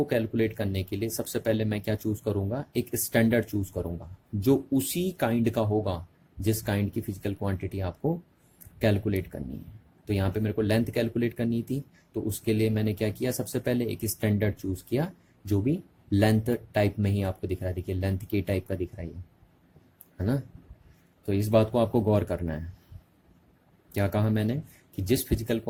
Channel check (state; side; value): identical; both; correlation 1.00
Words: कैलकुलेट करने के लिए सबसे पहले मैं क्या चूज करूंगा? एक स्टैंडर्ड चूज करूंगा जो उसी काइंड का होगा जिस काइंड की फिजिकल क्वांटिटी आपको कैलकुलेट करनी है। तो यहाँ पे मेरे को लेंथ कैलकुलेट करनी थी, तो उसके लिए मैंने क्या किया, सबसे पहले एक स्टैंडर्ड चूज किया जो भी लेंथ टाइप में ही आपको दिख रहा है। देखिए लेंथ के टाइप का दिख रहा है ना। तो इस बात को आपको गौर करना है। क्या कहा मैंने कि